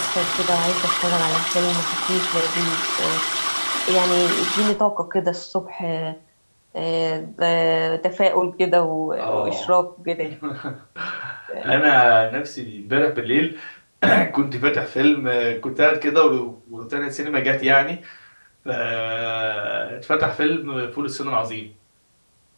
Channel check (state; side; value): inverted; both; correlation -1.00